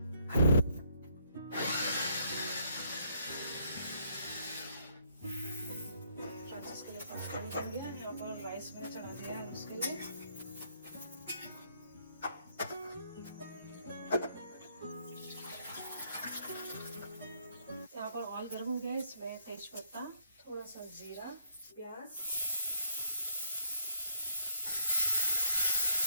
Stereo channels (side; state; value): both; inverted; correlation -0.70